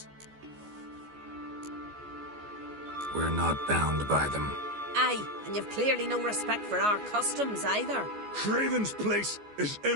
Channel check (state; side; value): late; left; 14 ms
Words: We're not bound by them. Aye, and you've clearly no respect for our customs either. Craven's place is